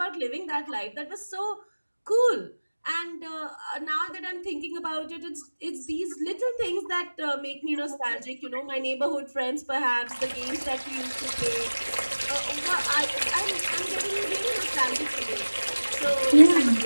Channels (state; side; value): inverted; both; correlation -1.00